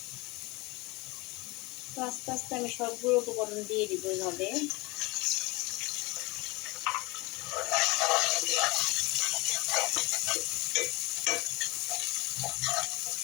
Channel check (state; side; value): quieter; right; 24.3 dB